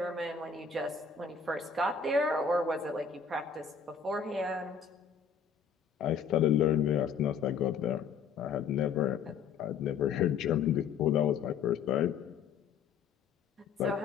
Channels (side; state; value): right; quieter; 6.4 dB